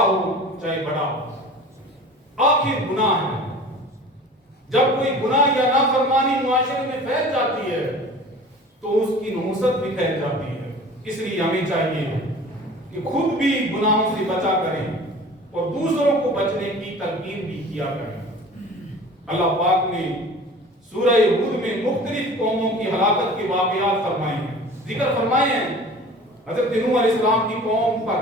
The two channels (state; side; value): normal; both; correlation 0.42